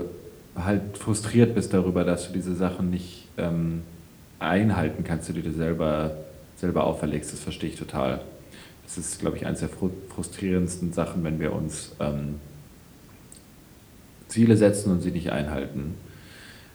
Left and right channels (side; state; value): both; identical; correlation 1.00